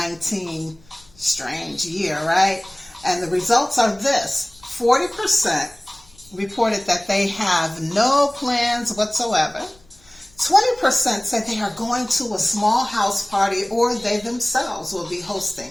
strange year, right? And the results are this: 40% reported that they have no plans whatsoever. 20% said they are going to a small house party, or they themselves will be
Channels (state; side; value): noise; left; rumble, 29 dB below the sound